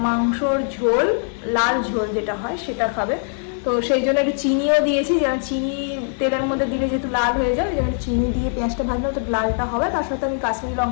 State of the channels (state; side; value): silent; right; 59 dB below the other